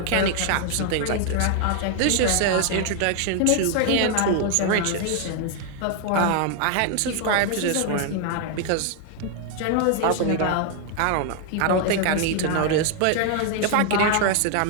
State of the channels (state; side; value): different; both; correlation 0.00